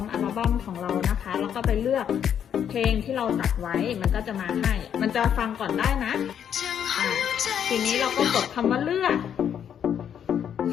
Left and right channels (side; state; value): right; quieter; 8.8 dB